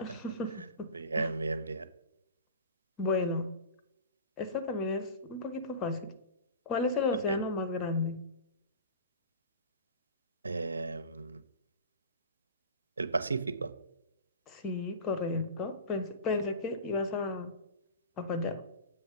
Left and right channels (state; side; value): inverted; both; correlation -0.33